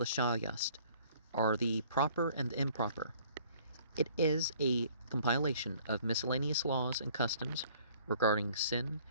Yast, or the Proper and Improper. It is a compilation of miscellaneous laws and customs regarding sin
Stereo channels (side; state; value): both; inverted; correlation -0.57